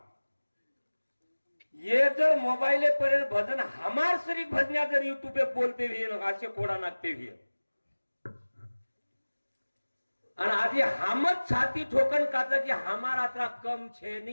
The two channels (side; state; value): both; inverted; correlation -1.00